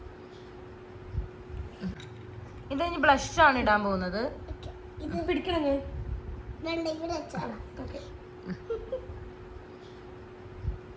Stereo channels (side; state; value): both; identical; correlation 1.00